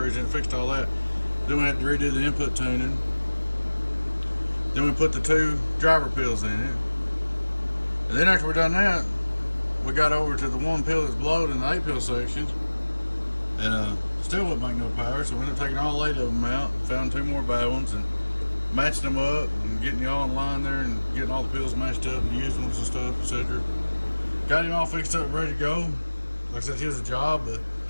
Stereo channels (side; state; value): both; inverted; correlation -1.00